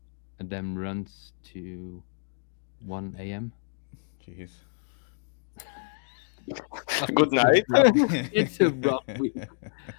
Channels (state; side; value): silent; right; 59 dB below the other